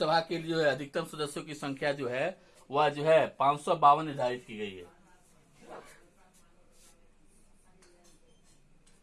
के लिए जो है अधिकतम सदस्यों की संख्या जो है वह जो है 552 निर्धारित की गई है।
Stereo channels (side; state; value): both; identical; correlation 1.00